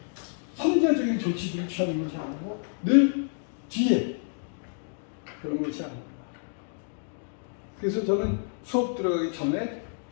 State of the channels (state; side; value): silent; right; digital silence